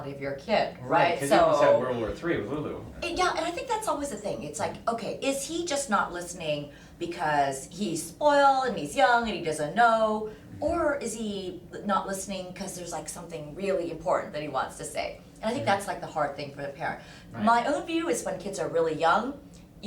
of your kid, right? Because you almost had World War III with Lulu. Yeah, and I think that's always the thing. It's like, okay, is he just not listening because he's spoiled and he's young and he doesn't know? Or is he not listening because there's like something really important that he wants to say? And I think that's like the hard thing for the parent. Right. My own view is when kids are really young,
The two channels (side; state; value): both; identical; correlation 1.00